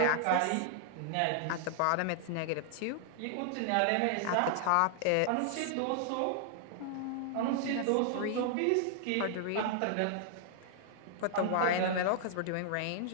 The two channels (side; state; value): both; different; correlation -0.01